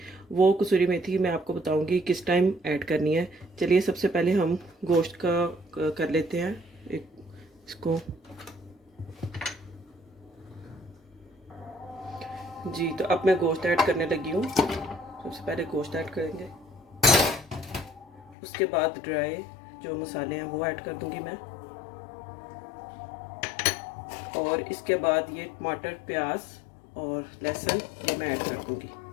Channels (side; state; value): right; drops out; at 18.4 s